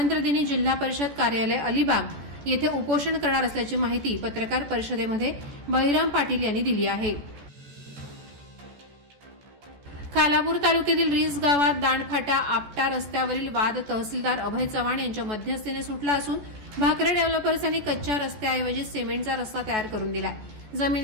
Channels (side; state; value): left; late; 14 ms